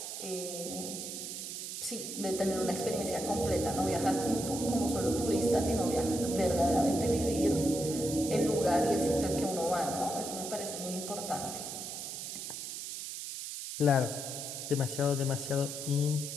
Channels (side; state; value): right; noise; hiss, 7 dB below the sound